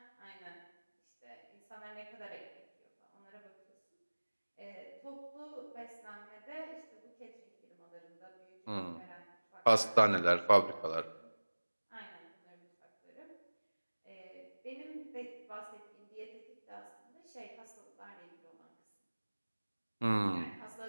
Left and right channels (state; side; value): inverted; both; correlation -1.00